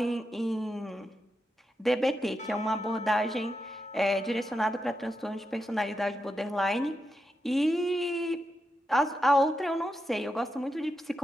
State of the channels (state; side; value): normal; both; correlation 0.86